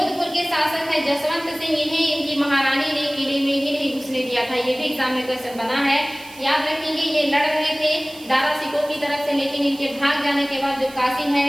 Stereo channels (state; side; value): noise; right; hiss, 20 dB below the sound